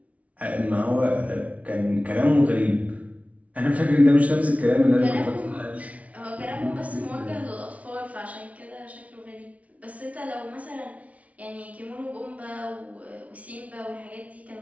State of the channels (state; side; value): late; left; 0.067 ms